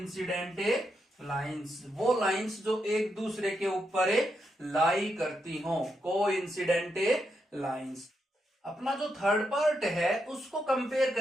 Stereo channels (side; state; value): both; normal; correlation 0.82